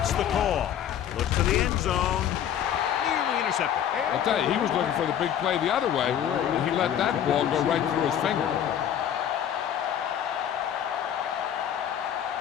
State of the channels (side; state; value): right; quieter; 9.8 dB